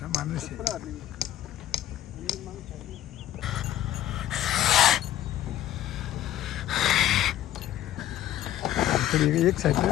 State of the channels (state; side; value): quieter; right; 12.8 dB